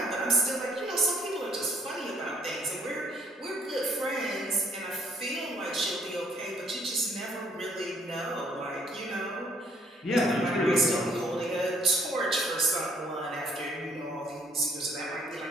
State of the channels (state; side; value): normal; both; correlation 0.65